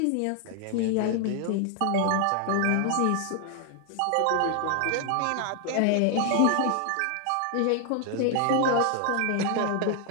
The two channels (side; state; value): both; different; correlation 0.00